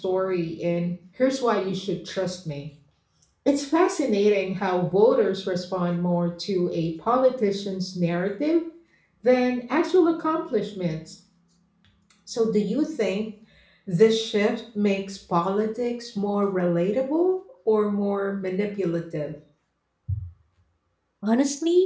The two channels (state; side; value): identical; both; correlation 1.00